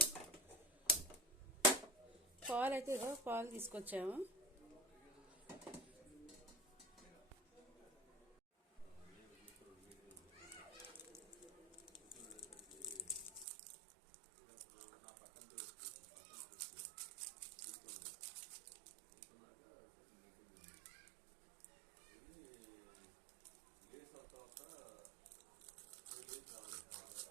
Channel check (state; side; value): drops out; left; at 13.5 s